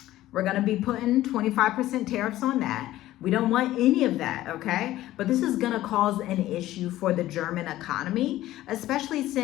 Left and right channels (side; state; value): right; quieter; 15.0 dB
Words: We're gonna be putting 25% tariffs on that. We don't want any of that, okay? But this is gonna cause an issue for the German economy, especially